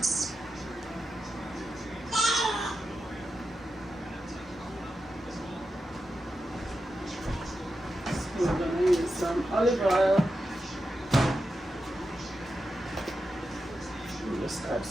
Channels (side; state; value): both; normal; correlation 0.89